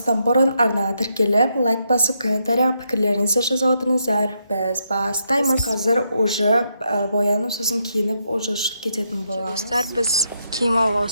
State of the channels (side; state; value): both; inverted; correlation -0.79